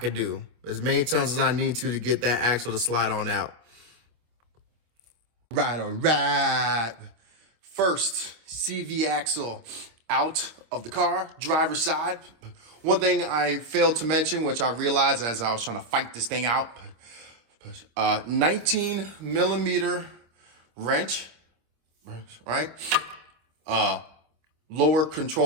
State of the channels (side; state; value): left; late; 25 ms